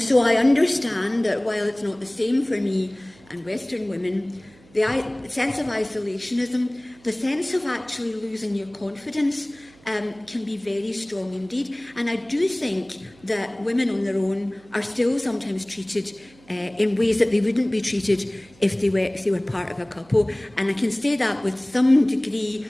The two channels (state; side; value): noise; right; hum, 27 dB below the sound